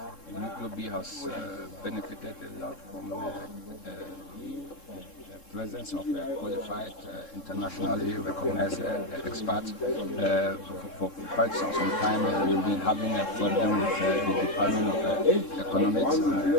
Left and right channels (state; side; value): late; right; 3.7 ms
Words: UB has benefited a lot from the presence of qualified, internationally recognized experts. For quite some time, we've been having a problem with the Department of Economics.